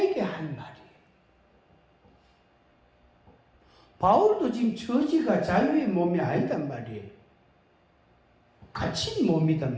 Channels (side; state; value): both; identical; correlation 1.00